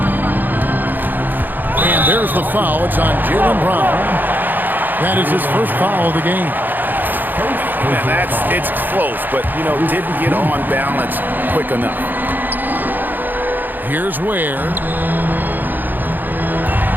And there's the foul. It's on Jaylen Brown. That is his first foul of the game. And it's close, but, didn't get on balance quick enough. Here's Ware.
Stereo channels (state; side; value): late; left; 0.088 ms